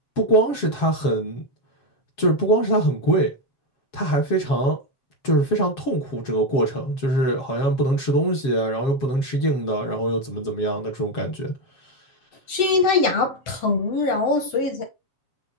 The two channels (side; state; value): right; late; 7.8 ms